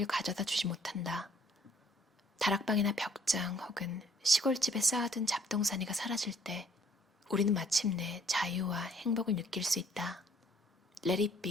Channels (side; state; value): both; normal; correlation 0.61